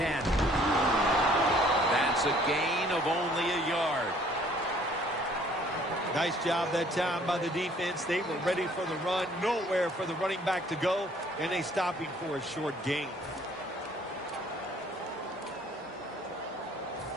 That's a gain of only a yard. Nice job that time by the defense. They were ready for the run. Nowhere for the running back to go. And they stop him for a short gain.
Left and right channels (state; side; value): normal; both; correlation 0.58